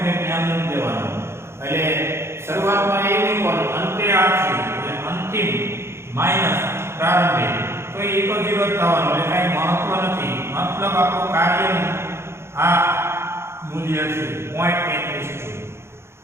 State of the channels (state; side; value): late; left; 0.12 ms